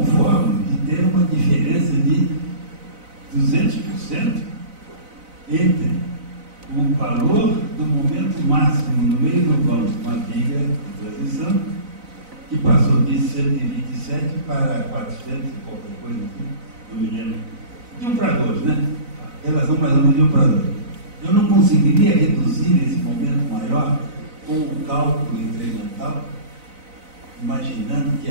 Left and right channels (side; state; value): left; late; 4.0 ms